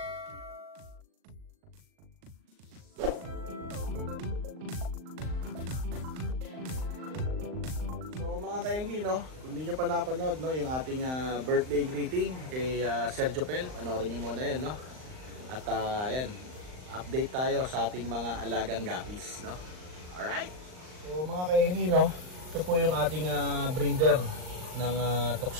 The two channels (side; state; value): left; late; 39 ms